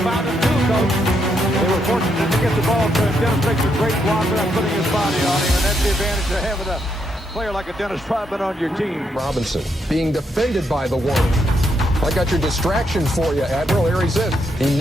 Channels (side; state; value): both; normal; correlation 0.78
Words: found a two, Coach. They were fortunate to get the ball to Dennis makes a great block without putting his body on him, and that's the advantage of having a player like a Dennis Rodman on your team. Robinson being defended by the one. I got your distraction for you, Admiral. Here he says he